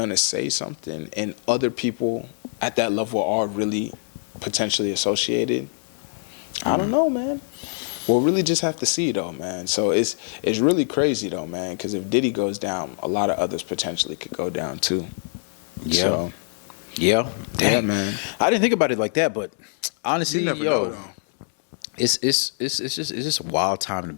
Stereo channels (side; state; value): right; silent; 63 dB below the other